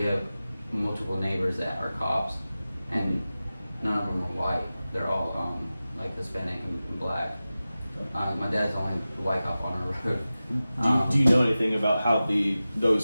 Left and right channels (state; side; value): inverted; both; correlation -0.95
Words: have multiple neighbors that are cops, and none of them are white. They're all like Hispanic and black. My dad's the only white cop on our road. Do you know anything about how